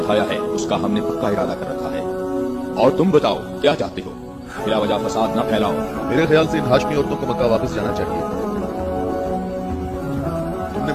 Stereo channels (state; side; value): identical; both; correlation 1.00